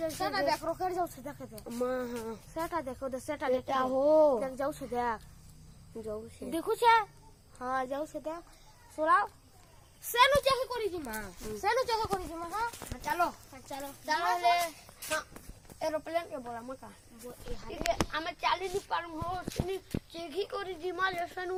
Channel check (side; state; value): both; identical; correlation 1.00